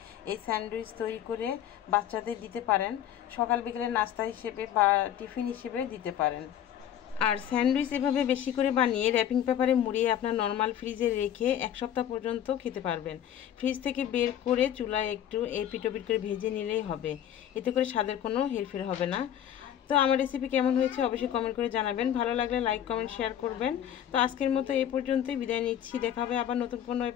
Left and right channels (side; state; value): right; quieter; 10.5 dB